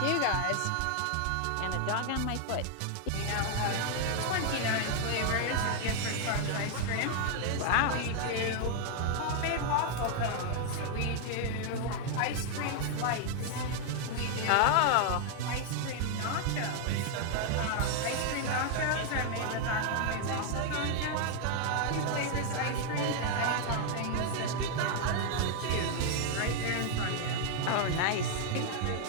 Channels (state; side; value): different; both; correlation 0.00